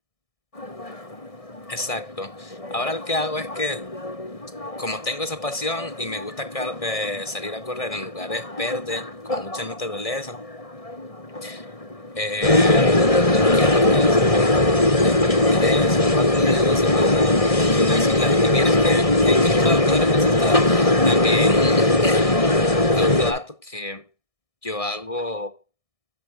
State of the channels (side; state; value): right; late; 1.6 ms